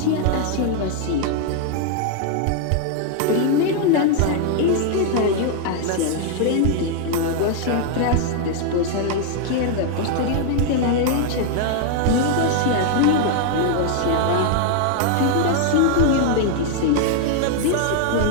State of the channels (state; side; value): different; both; correlation 0.00